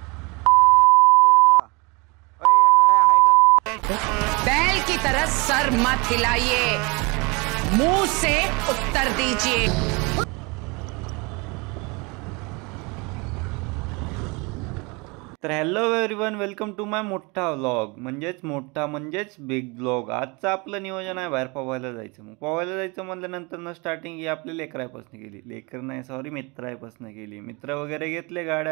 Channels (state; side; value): quieter; left; 28.2 dB